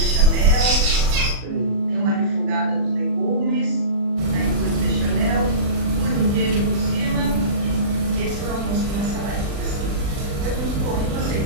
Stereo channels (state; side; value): late; left; 40 ms